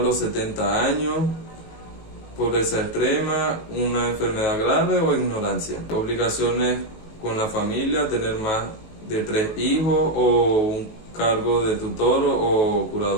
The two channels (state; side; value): late; right; 19 ms